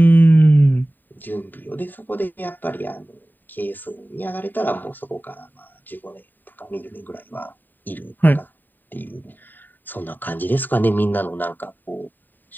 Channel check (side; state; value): right; late; 0.090 ms